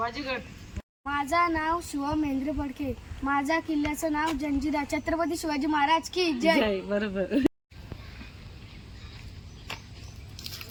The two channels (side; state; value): both; identical; correlation 1.00